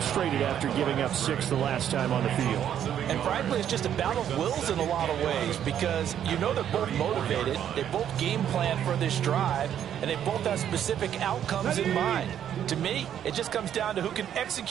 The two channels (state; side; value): quieter; left; 9.8 dB